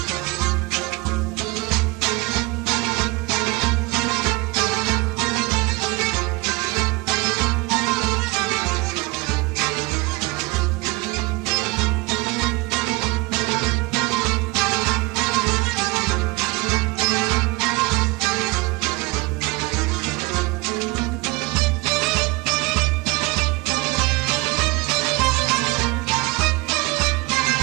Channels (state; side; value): quieter; left; 23.2 dB